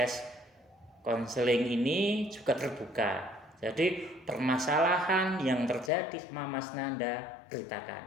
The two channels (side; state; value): right; drops out; at 5.9 s